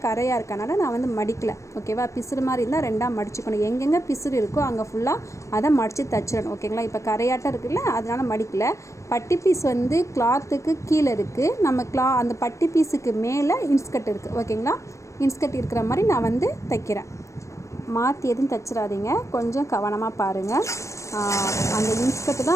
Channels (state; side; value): late; right; 0.15 ms